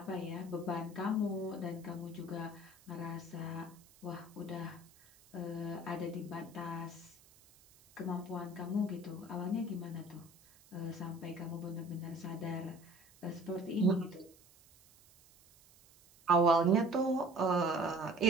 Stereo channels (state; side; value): noise; right; hiss, 26 dB below the sound